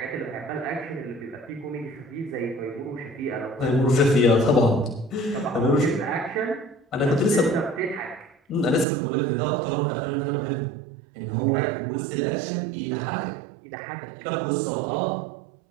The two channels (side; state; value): left; drops out; at 8.8 s